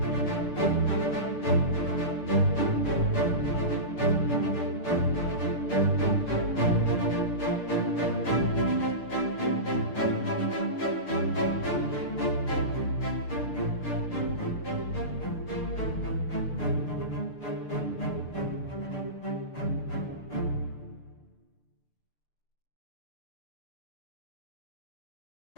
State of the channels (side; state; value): right; late; 6.7 ms